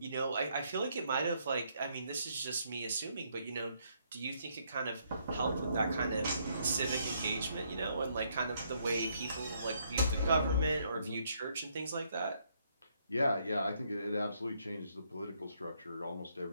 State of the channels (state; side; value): inverted; both; correlation -0.71